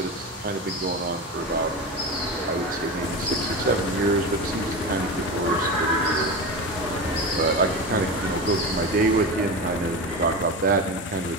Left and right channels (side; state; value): both; normal; correlation 0.24